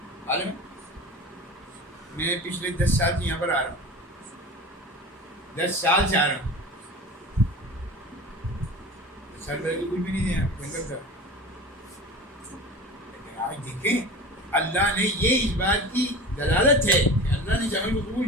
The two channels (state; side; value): normal; both; correlation 0.35